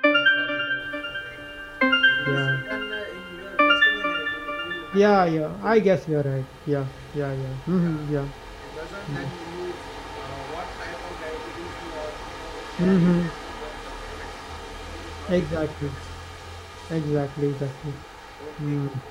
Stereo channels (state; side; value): identical; both; correlation 1.00